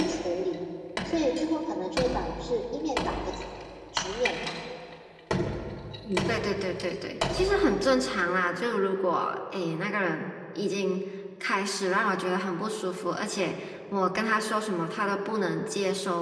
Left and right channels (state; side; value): identical; both; correlation 1.00